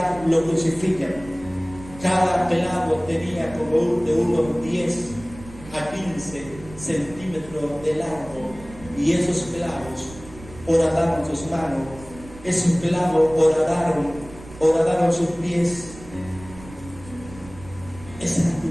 lo crucifican. Cada clavo tenía como de unos 10 a 15 centímetros de largo, y esos clavos horadaron sus manos, esos clavos horadaron sus pies. Ese era tu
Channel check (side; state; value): right; noise; rumble, 18 dB below the sound